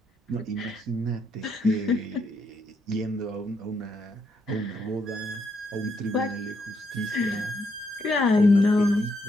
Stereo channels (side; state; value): both; normal; correlation 0.76